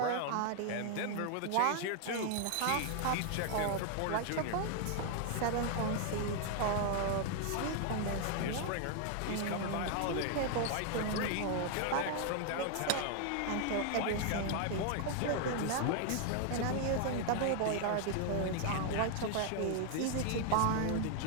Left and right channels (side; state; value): both; different; correlation 0.00